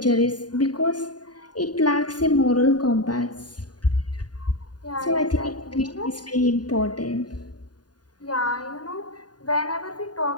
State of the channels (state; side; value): late; right; 0.70 ms